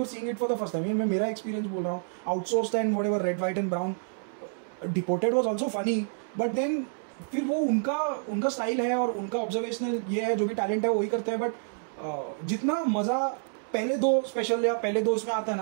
seeing it for the first time. मैं मेरा एक्सपीरियंस बोल रहा हूँ. Outsourced and whatever, Red White and Brown. Deported was also funny, but then फिर वो उनका स्टाइल है और उनका ऑब्जर्वेशनल ये है, जो भी टैलेंट है वही करते हैं. बट जितना मजा पहले 2 स्पेशल या पहले 2 इसमें आता है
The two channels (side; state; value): left; silent; digital silence